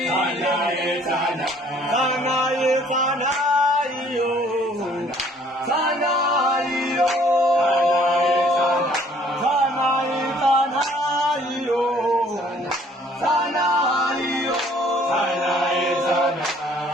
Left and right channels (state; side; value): normal; both; correlation 0.59